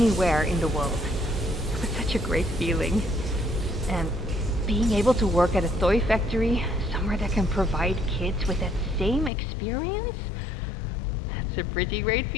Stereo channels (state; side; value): drops out; right; at 9.3 s